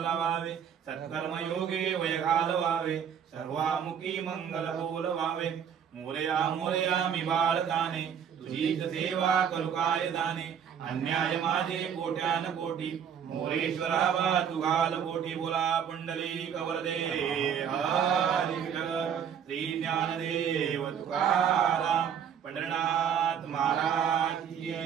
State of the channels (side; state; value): left; quieter; 8.1 dB